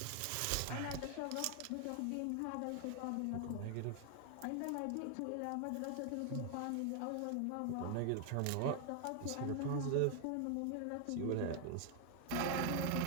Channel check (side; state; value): both; different; correlation 0.00